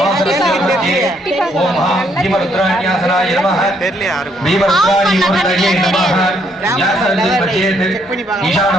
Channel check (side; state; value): both; normal; correlation 0.71